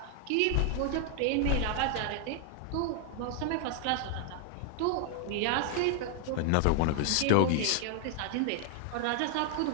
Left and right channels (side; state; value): both; different; correlation 0.00